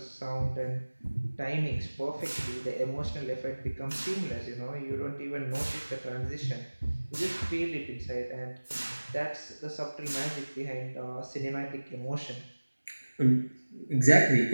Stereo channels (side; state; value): both; inverted; correlation -1.00